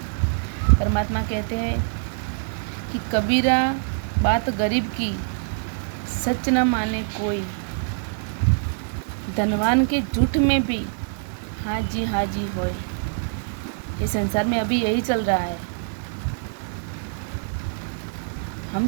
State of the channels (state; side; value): silent; left; digital silence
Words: परमात्मा कहते हैं कि कबीरा बात गरीब की सच न माने कोई, धनवान के झूठ में भी हाँ जी होए। इस संसार में अभी यही चल रहा है।